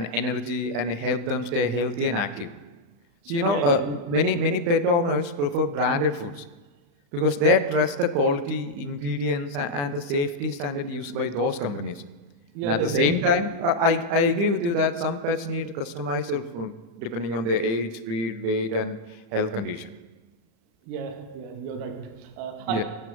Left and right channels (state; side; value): late; left; 35 ms